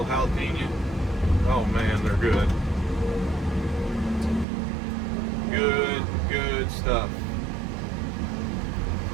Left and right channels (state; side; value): drops out; left; at 4.5 s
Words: jalapeno. Oh man, they're good. Good stuff.